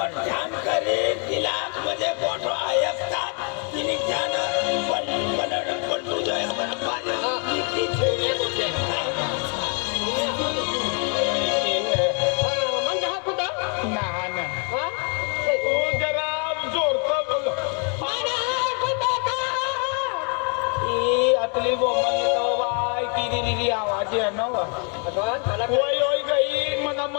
ध्यान करे तिला म्हणजे मोठो ऐकतात तिने ध्यान पण तुझं एक बरं पाहिजे किती छेड म्हणजे हा कुठं ना ना हा तू जरा जोरतो बोल ई आतली बोमन तो बाय किरी रिरी आवाज आहे ना वा ओय ओय गई मना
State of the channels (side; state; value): right; quieter; 39.1 dB